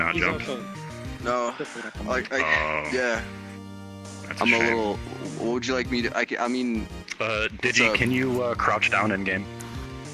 jump? No. Oh, Yeah. that's I'm a shame. little. What would you like me to? I mean. Digi, up? can you crouch down in game?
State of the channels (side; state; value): both; identical; correlation 1.00